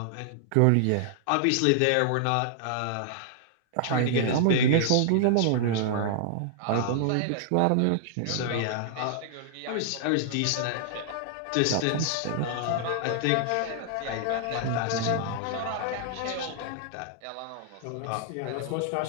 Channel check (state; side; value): different; both; correlation -0.01